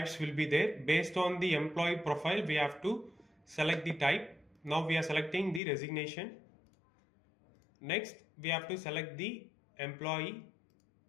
will be there. Based on the employee profile, we have to select the type. Now we are selecting the resignation. Next, we have to select the employee.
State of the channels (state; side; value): drops out; right; at 5.6 s